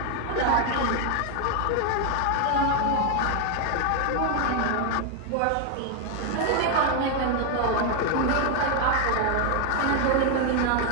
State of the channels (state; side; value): different; both; correlation 0.00